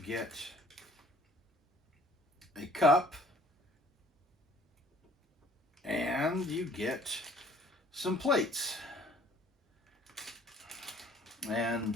a cup, and you get some plates. And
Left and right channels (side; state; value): both; normal; correlation 0.55